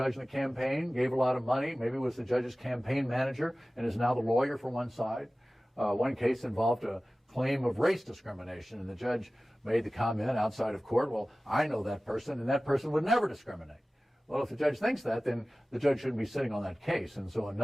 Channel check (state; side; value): normal; both; correlation 0.97